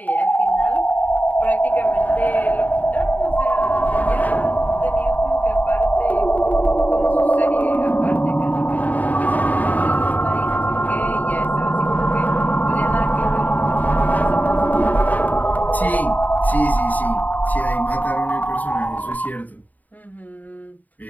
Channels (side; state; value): right; late; 0.079 ms